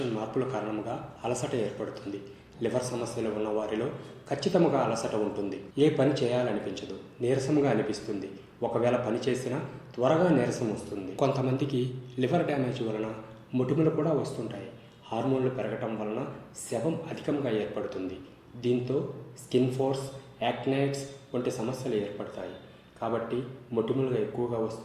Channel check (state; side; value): identical; both; correlation 1.00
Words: మార్పుల కారణంగా అలసట ఏర్పడుతుంది. లివర్ సమస్యలు ఉన్న వారిలో ఖచ్చితంగా అలసట ఉంటుంది. ఏ పని చేయాలనిపించదు, నీరసంగా అనిపిస్తుంది. ఒకవేళ పని చేసినా త్వరగా నీరసం వస్తుంది. కొంతమందికి లివర్ డ్యామేజ్ వలన మొటిమలు కూడా వస్తుంటాయి. హార్మోన్లు పెరగటం వలన శవం అధికంగా ఏర్పడుతుంది. దీంతో స్కిన్ ఫోర్స్, యాక్నైట్స్ వంటి సమస్యలు ఏర్పడతాయి. కాబట్టి మొటిమలు ఎక్కువగా